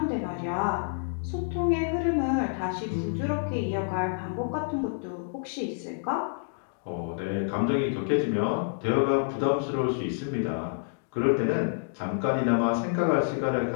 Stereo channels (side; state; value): right; silent; digital silence